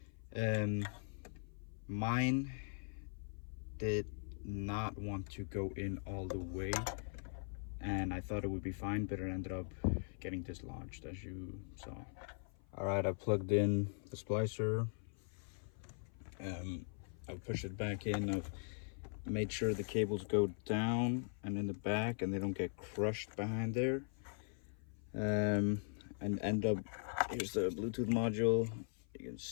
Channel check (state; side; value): silent; right; 51 dB below the other